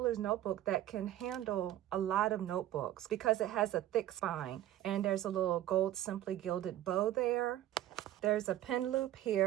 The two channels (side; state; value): left; quieter; 13.3 dB